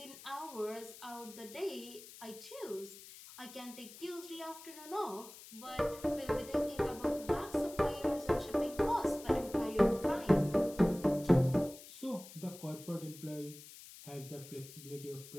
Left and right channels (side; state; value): left; noise; hiss, 16 dB below the sound